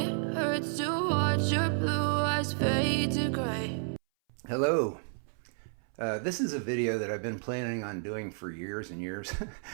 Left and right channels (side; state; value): left; silent; 57 dB below the other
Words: hurts to watch your blue eyes fade to gray. Hello. This is a video that I've been planning on doing for years and years,